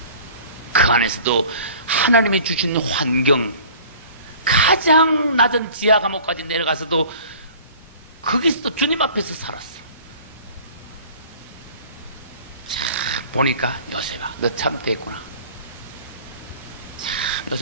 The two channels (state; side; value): inverted; both; correlation -0.46